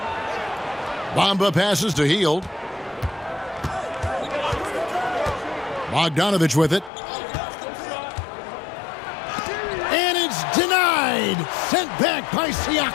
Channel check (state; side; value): drops out; right; at 6.9 s